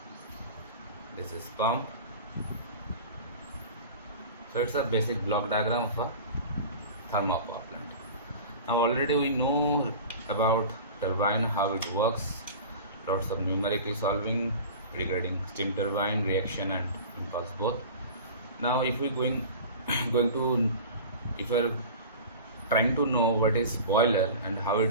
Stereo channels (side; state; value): both; inverted; correlation -0.36